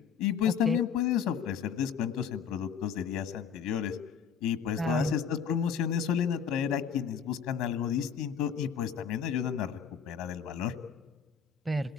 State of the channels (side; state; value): right; quieter; 7.1 dB